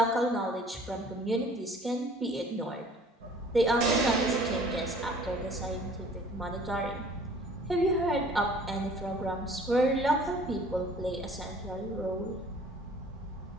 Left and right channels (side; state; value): both; normal; correlation 0.52